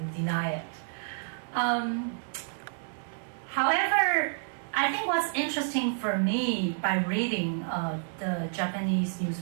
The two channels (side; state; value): left; silent; 58 dB below the other